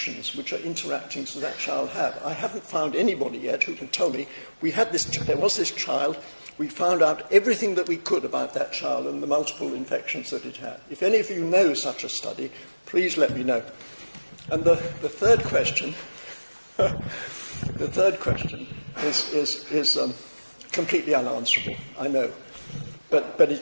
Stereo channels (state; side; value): inverted; both; correlation -1.00